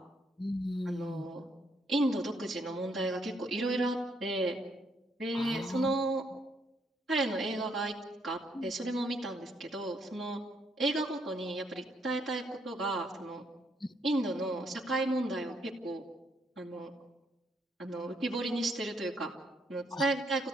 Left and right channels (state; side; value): normal; both; correlation 0.72